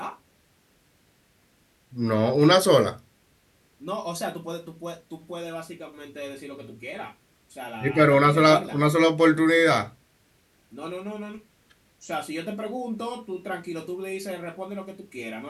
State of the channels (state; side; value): identical; both; correlation 1.00